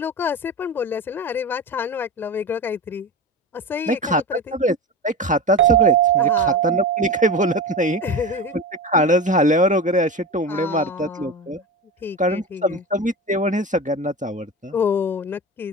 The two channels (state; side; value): normal; both; correlation 0.26